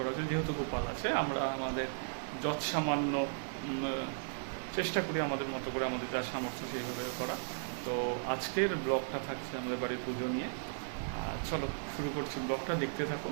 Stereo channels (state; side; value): silent; left; digital silence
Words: হয়েছে। যেহেতু গোপাল আছে, আমরা আমাদের যৎ সামান্য চেষ্টা করি আমাদের মতো করে, আমাদের যা সামর্থ্য সেইভাবে করা। তো আজকের ব্লগটা থাকছে আমাদের বাড়ির পুজো নিয়ে। চলো শুরু করছি, ব্লগটা দেখতে থাকো।